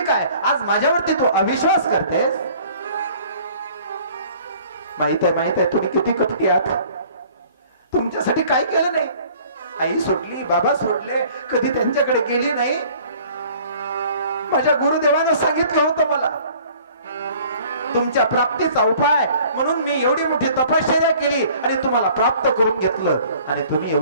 काय? आज माझ्यावरती तू अविश्वास करतेस. माहित आहे तुम्ही किती कपटी आहात. तुमच्यासाठी काय केलं नाही. आई सोडली बाबा सोडले कधी त्यांच्याकडे गेली नाही. माझ्या गुरुदेवानं सांगितलं होतं मला तुमच्या प्राप्तीचा उपाय म्हणून मी एवढी मोठी तपश्चर्या केली आणि तुम्हाला प्राप्त करून घेतलं आणि तुम्ही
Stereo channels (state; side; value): inverted; both; correlation -0.52